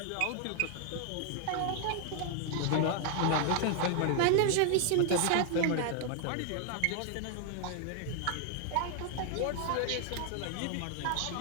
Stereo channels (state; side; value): different; both; correlation 0.00